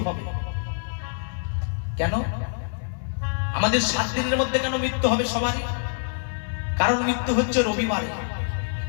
হবে। কেন আমাদের 7 দিনের মধ্যে কেন মৃত্যু হবে সবারই? কারণ মৃত্যু হচ্ছে রবিবারে,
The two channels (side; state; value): right; silent; 61 dB below the other